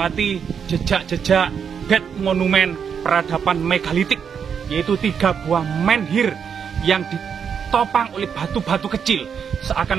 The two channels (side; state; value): left; quieter; 7.1 dB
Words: jejak-jejak dead monumen peradaban megalitik, yaitu 3 buah menhir yang ditopang oleh batu-batu kecil.